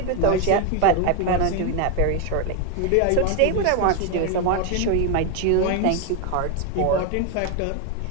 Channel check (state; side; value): different; both; correlation 0.01